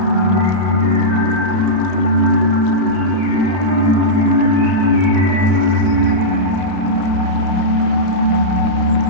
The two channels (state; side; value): late; left; 32 ms